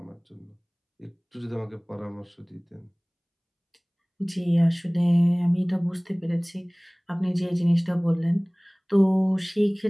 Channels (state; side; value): identical; both; correlation 1.00